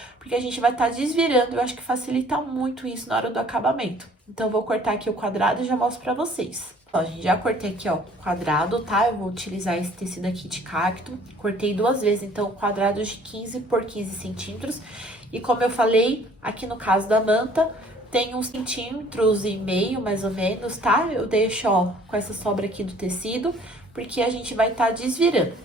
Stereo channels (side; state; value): both; normal; correlation 0.56